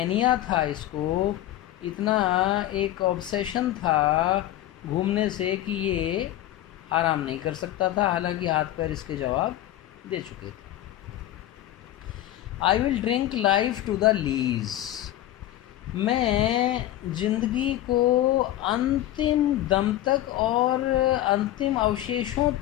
था, इसको इतना एक ऑब्सेशन था घूमने से कि ये आराम नहीं कर सकता था, हालांकि हाथ पैर इसके जवाब दे चुके थे। I will drink life to the lees. मैं जिंदगी को अंतिम दम तक और अंतिम अवशेषों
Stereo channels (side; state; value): right; quieter; 13.9 dB